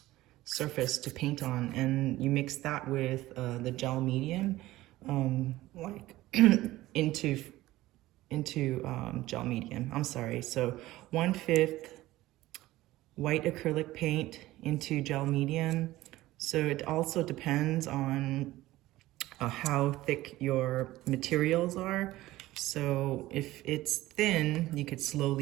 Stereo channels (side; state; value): left; quieter; 16.9 dB